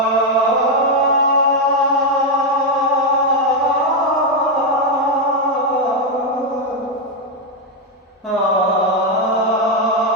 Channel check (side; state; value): both; normal; correlation 0.04